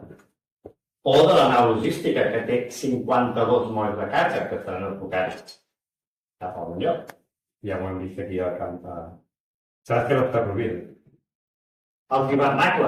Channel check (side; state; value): both; identical; correlation 1.00